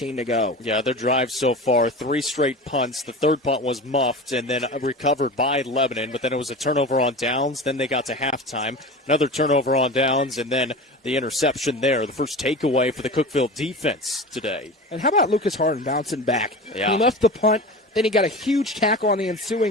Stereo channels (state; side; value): normal; both; correlation 0.31